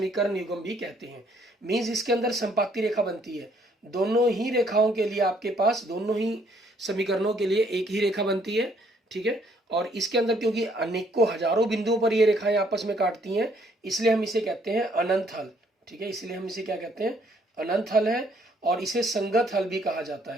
युग्म भी कहते हैं। मीन्स इसके अंदर संपाती रेखा बनती है, दोनों ही रेखाओं के लिए आपके पास, दोनों ही समीकरणों के लिए एक ही रेखा बनती है। ठीक है, और इसके अंदर क्योंकि अनेकों हजारों बिंदुओं पर ये रेखाएं आपस में काटती हैं, इसलिए हम इसे कहते हैं अनंत हल। ठीक है, इसलिए हम इसे क्या कहते हैं, अनंत हल है, और इसे संगत हल भी कहा जाता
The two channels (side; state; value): both; normal; correlation 0.66